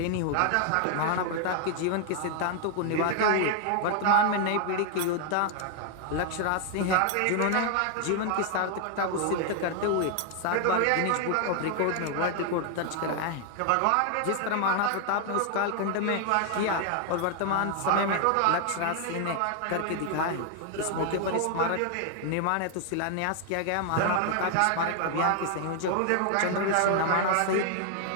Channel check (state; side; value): different; both; correlation 0.00